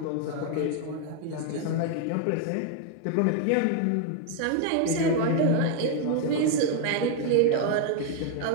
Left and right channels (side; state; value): both; different; correlation 0.00